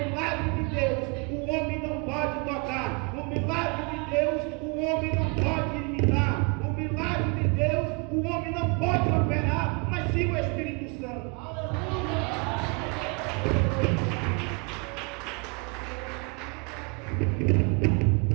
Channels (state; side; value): quieter; left; 32.1 dB